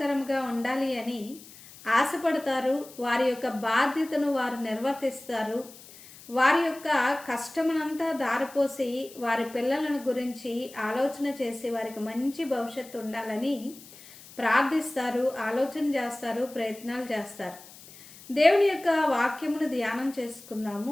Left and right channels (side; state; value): left; noise; hiss, 20 dB below the sound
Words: ఉండాలి అని ఆశపడతారు. వారి యొక్క బాధ్యతను వారు నిర్వర్తిస్తారు. వారి యొక్క కష్టమునంతా దారిపోసి వారి పిల్లలను గురించి ఆలోచన చేసి వారికి మంచి భవిష్యత్తు ఉండాలని ప్రార్థిస్తారు, ఆలోచన చేస్తారు, ప్రయత్నాలు చేస్తారు. దేవుని యొక్క వాక్యమును ధ్యానం